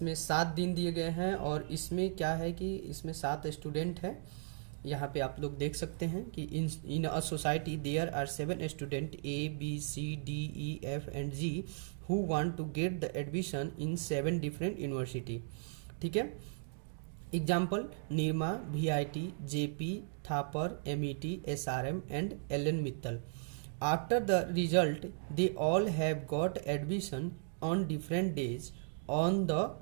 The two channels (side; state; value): left; silent; digital silence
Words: 7 दिन दिए गए हैं और इसमें क्या है कि इसमें 7 स्टूडेंट है। यहाँ पे आप लोग देख सकते हैं कि in a society there are 7 student ABCDEFG who want to get the admission in 7 different university, ठीक है। Example: Nirma, VIT, JP, Thapar, MET, SRM and LN Mittal. After the result they all have got admission on different days on the